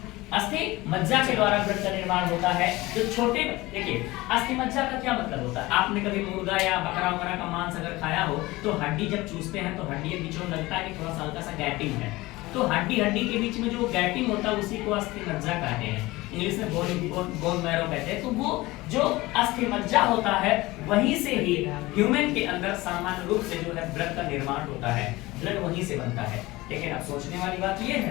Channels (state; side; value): quieter; right; 20.1 dB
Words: अस्थि मज्जा के द्वारा ब्लड का निर्माण होता है। जो छोटे, देखिए अस्थि मज्जा का क्या मतलब होता है, आपने कभी मुर्गा या बकरा वगैरह का मांस अगर खाया हो तो हड्डी जब चूसते हैं तो हड्डी के बीच में लगता है कि थोड़ा सा हल्का सा गैपिंग है, तो हड्डी के बीच में जो गैपिंग होता है उसी को अस्थि मज्जा कहते हैं, इंग्लिश में बोन मैरो कहते हैं। तो वो जो अस्थि मज्जा होता है वहीं से ही ह्यूमन के अंदर सामान्य रूप से जो है ब्लड का निर्माण होता है, ब्लड वहीं से बनता है। लेकिन अब सोचने वाली बात ये